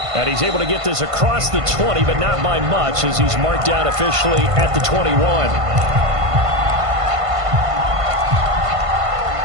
And he's able to get this across the 20, but not by much as he's marked out officially at the 21.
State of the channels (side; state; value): left; late; 1.5 ms